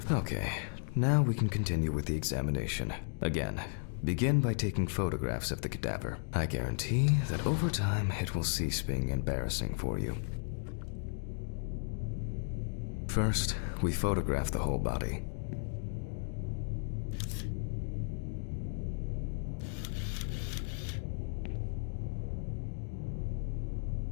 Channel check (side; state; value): right; silent; digital silence